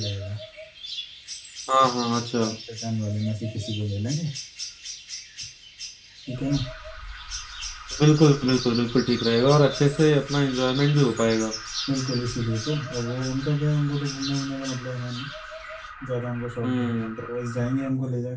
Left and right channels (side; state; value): both; identical; correlation 1.00